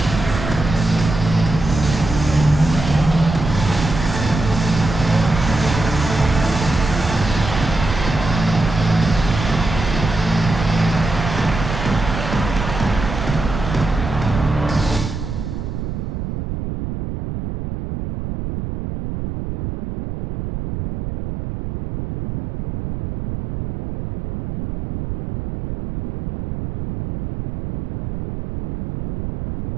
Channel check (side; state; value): right; noise; rumble, 6 dB below the sound